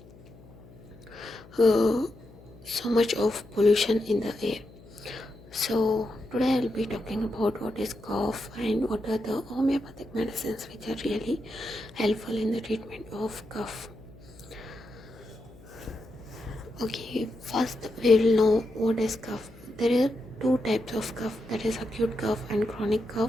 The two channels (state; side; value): noise; left; hum, 22 dB below the sound